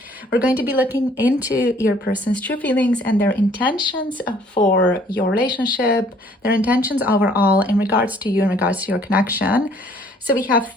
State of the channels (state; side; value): normal; both; correlation 0.59